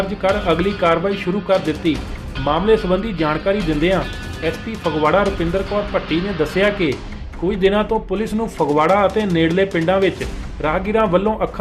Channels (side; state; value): both; identical; correlation 1.00